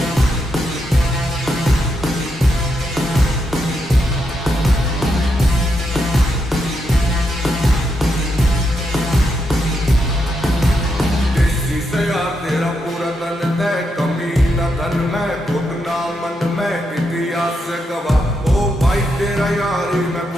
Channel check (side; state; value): both; normal; correlation 0.81